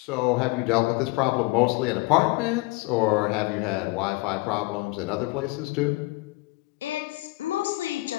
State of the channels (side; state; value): right; quieter; 22.7 dB